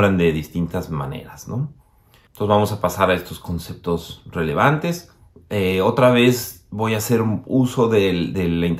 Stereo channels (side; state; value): both; identical; correlation 1.00